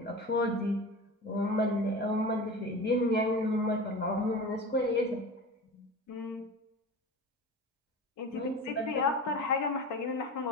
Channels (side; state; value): both; normal; correlation 0.32